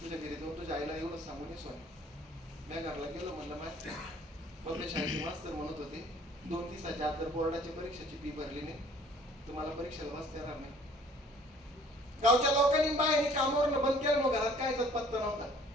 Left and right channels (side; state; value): both; normal; correlation 0.55